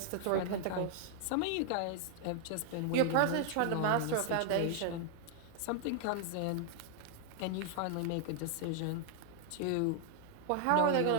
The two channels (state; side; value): different; both; correlation 0.00